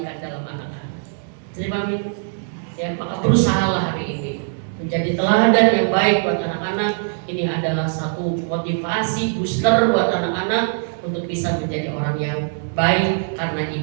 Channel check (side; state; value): left; silent; 64 dB below the other